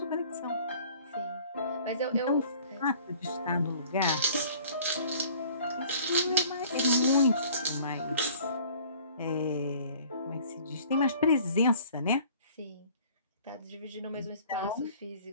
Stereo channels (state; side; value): inverted; both; correlation -0.51